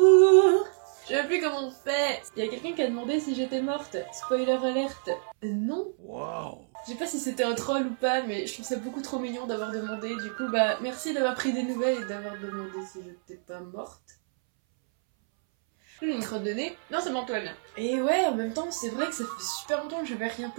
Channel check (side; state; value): left; silent; 59 dB below the other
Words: Je sais plus comment on fait. Il y a quelqu'un qui a demandé si j'étais morte. Spoiler alerte. Non. Wow. Je sais pas si c'était un troll ou pas, mais je trouve ça beaucoup trop mignon d'avoir demandé. Du coup, bah merci d'avoir pris des nouvelles et d'avoir demandé si j'étais pas morte. J'ai une crotte de nez. Non, c'est bon, tout va bien. Et ouais, en même temps, c'est vrai que ça fait super longtemps que j'avais rien